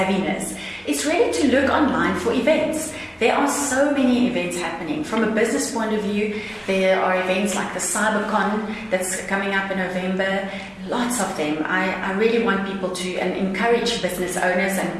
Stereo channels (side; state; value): both; identical; correlation 1.00